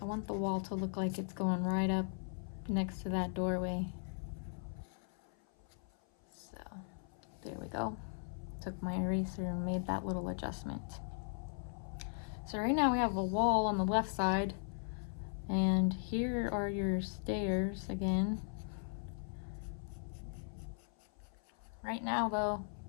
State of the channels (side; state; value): right; silent; 52 dB below the other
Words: I want the wall to look like it's going right up next to that doorway. So there we go. Took my eraser and made that little adjustment. So right now we have a wall on the left side, and here are your stairs again. Right now though,